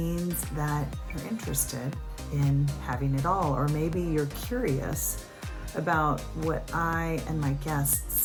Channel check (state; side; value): identical; both; correlation 1.00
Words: that you're interested in having it all, or maybe you're curious about what I and my